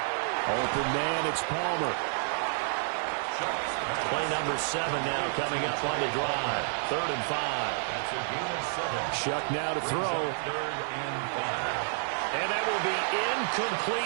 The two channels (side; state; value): left; silent; 58 dB below the other